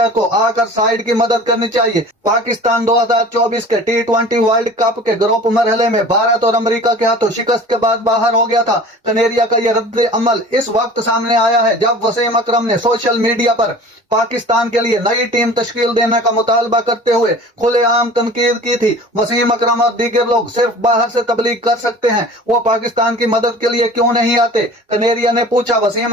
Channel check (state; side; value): normal; both; correlation 0.42